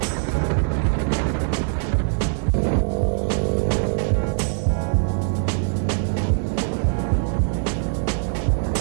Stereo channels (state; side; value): silent; left; digital silence